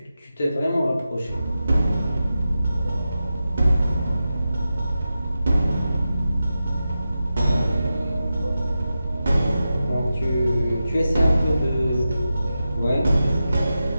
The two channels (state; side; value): inverted; both; correlation -0.91